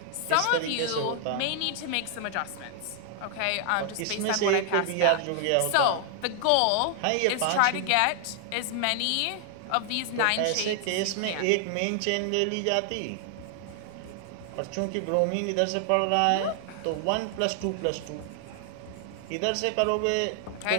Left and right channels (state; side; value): different; both; correlation 0.00